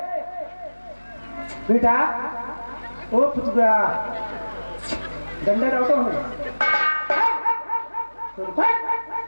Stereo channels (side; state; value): both; inverted; correlation -1.00